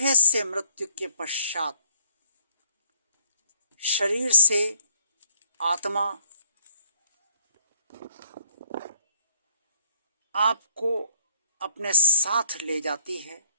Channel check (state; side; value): inverted; both; correlation -0.61